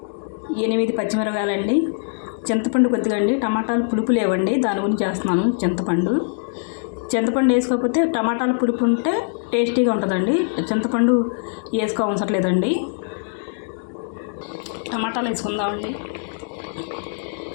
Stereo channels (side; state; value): right; silent; digital silence